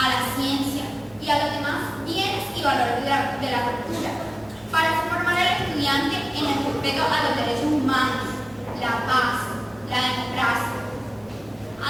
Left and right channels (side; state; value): right; noise; hum, 27 dB below the sound